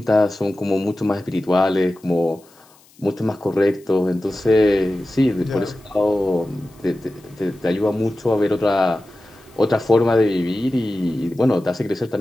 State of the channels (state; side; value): noise; left; hiss, 29 dB below the sound